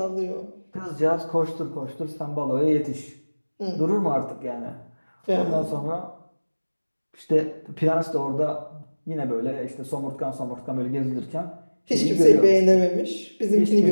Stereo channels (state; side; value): inverted; both; correlation -1.00